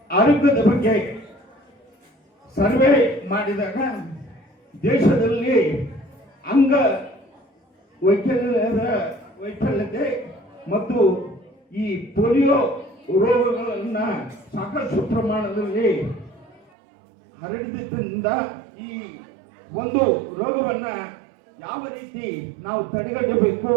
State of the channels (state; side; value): drops out; left; at 16.7 s